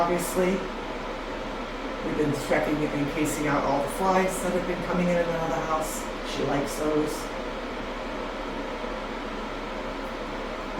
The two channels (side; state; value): both; identical; correlation 1.00